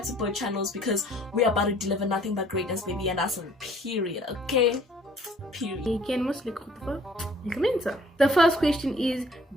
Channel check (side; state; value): both; normal; correlation 0.57